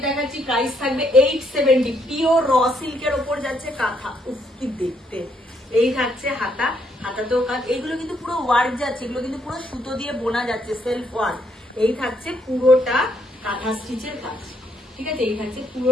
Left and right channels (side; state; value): both; normal; correlation 0.72